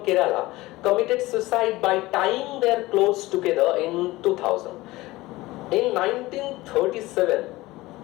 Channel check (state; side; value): quieter; right; 19.2 dB